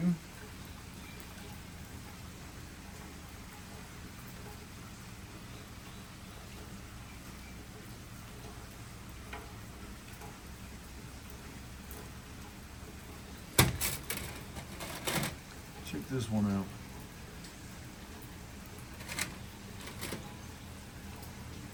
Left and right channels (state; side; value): identical; both; correlation 1.00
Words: this one out.